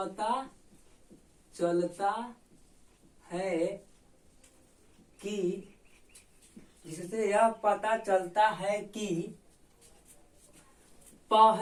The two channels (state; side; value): identical; both; correlation 1.00